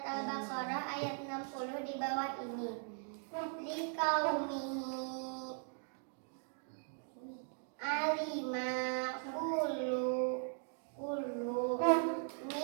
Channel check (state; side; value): silent; left; 52 dB below the other